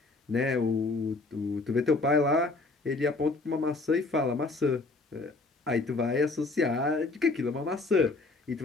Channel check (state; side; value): quieter; right; 3.4 dB